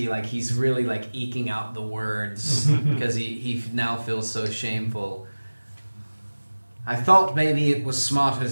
like he's really like eking out the words because he now feels so shameful. I thought maybe it was smarter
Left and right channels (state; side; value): inverted; both; correlation -1.00